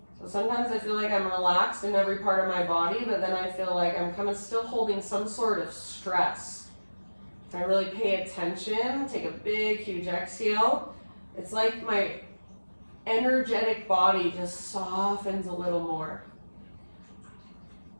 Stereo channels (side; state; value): both; inverted; correlation -1.00